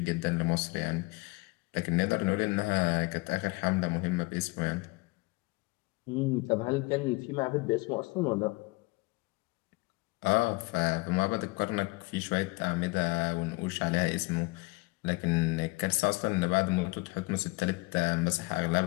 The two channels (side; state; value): right; quieter; 25.4 dB